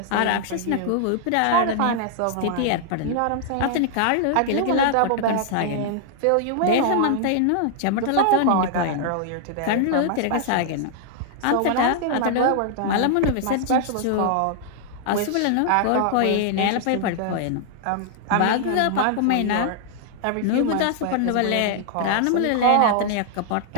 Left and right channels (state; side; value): different; both; correlation -0.01